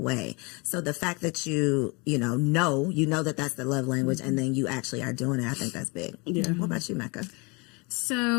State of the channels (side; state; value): right; quieter; 29.2 dB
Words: So the fact that you know that that's the love language, and then you actually are doing it, I think that's big. What about you, Mecca?